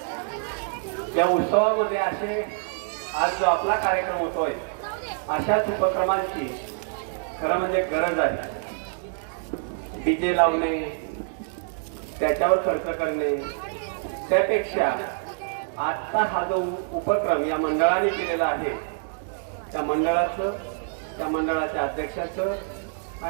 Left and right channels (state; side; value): silent; left; digital silence